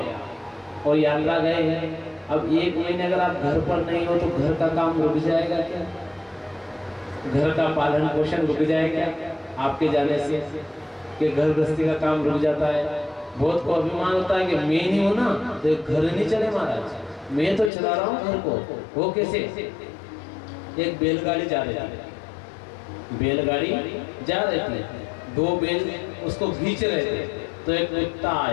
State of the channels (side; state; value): right; drops out; at 17.7 s